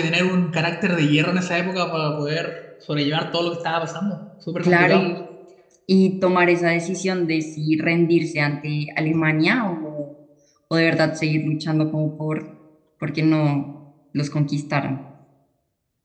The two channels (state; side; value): identical; both; correlation 1.00